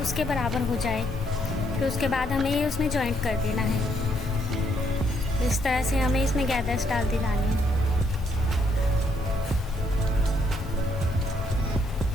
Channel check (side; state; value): both; normal; correlation 0.72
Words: उसके बराबर हो जाए। फिर उसके बाद हमें ये उसमें जॉइंट कर देना है। इस तरह से हमें इसमें गैदर्स डालते जाने हैं।